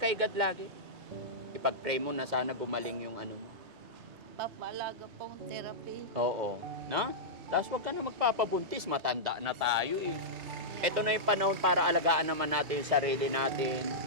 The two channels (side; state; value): left; late; 2.3 ms